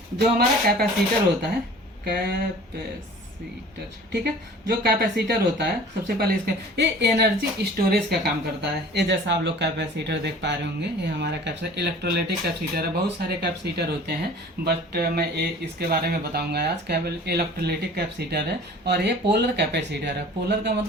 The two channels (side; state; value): both; normal; correlation 0.45